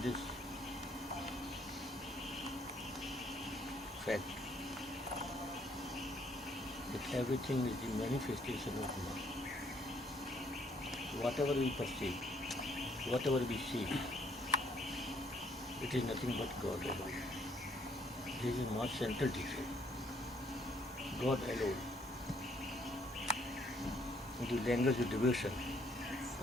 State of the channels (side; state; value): both; normal; correlation 0.67